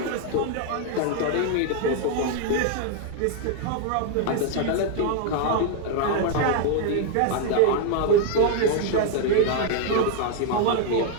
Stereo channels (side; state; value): both; different; correlation 0.00